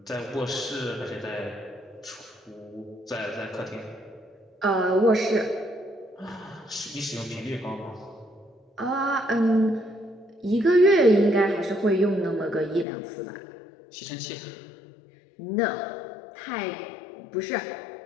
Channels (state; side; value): drops out; right; at 12.9 s